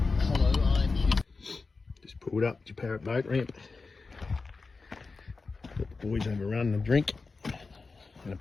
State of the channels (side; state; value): right; quieter; 4.1 dB